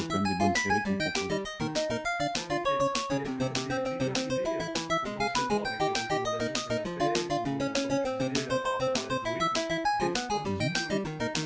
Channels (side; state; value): both; identical; correlation 1.00